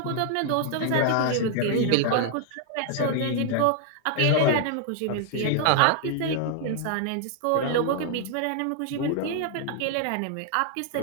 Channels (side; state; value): both; different; correlation 0.00